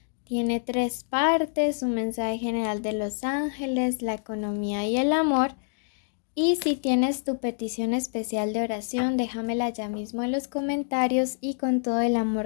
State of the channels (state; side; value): silent; right; digital silence